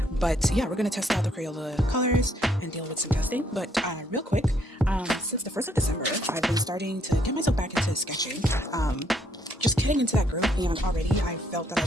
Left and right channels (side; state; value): both; normal; correlation 0.70